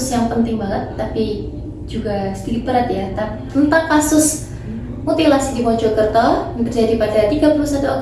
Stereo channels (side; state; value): both; identical; correlation 1.00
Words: yang penting banget, tapi juga sedikit berat ya, tentang kasus mutilasi di Mojokerto yang terjadi pada 31